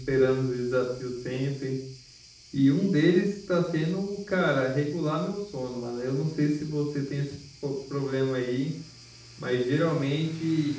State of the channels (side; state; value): both; identical; correlation 1.00